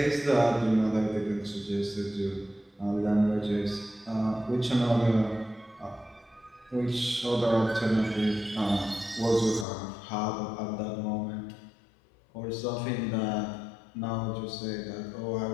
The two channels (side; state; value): right; drops out; at 9.7 s